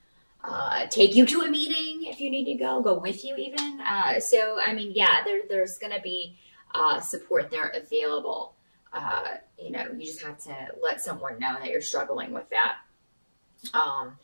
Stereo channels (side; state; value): both; inverted; correlation -1.00